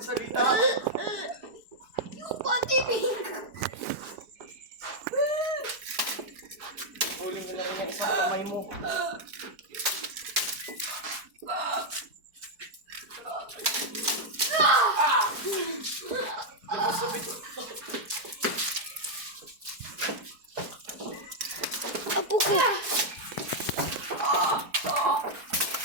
Yung pati pink. Huling ka na rin ang isang kamay mo. Apo ko.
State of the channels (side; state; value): left; late; 4.6 ms